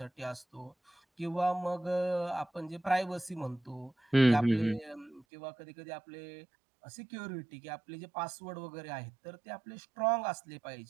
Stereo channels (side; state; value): left; drops out; at 5.2 s